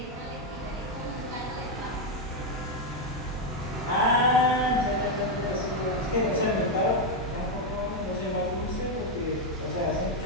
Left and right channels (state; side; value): normal; both; correlation 0.04